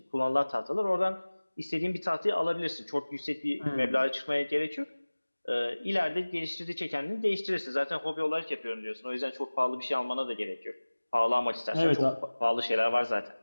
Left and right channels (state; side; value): inverted; both; correlation -1.00